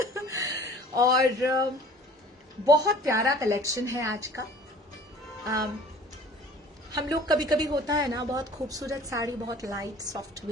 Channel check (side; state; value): both; normal; correlation 0.49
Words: और बहुत प्यारा कलेक्शन है आज का. हम लोग कभी कभी होता है ना, बहुत खूबसूरत साड़ी, बहुत light